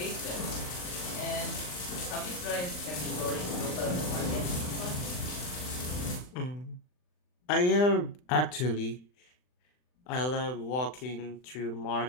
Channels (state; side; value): late; right; 39 ms